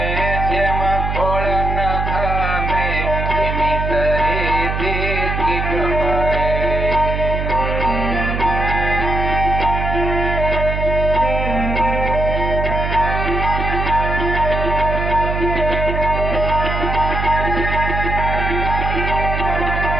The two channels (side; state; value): right; noise; hum, 2 dB below the sound